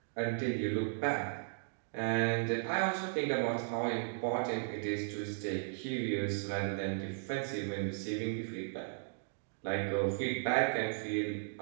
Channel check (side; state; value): left; silent; digital silence